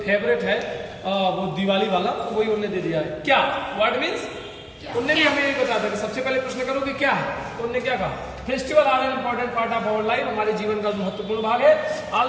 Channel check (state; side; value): identical; both; correlation 1.00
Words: फेवरेट है वो दिवाली वाला, तो वही उन्होंने दे दिया है। क्या व्हाट मीन्स, उन्होंने भी हमें ये बताया था कि सबसे पहले प्रश्न करो कि क्या है, तो उन्होंने क्या कहा, festival are an important part of our life, हमारे जीवन का महत्वपूर्ण भाग है।